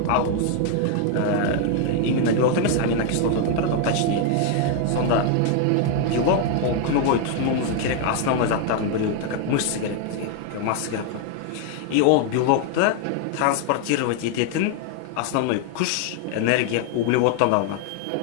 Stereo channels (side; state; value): both; different; correlation 0.00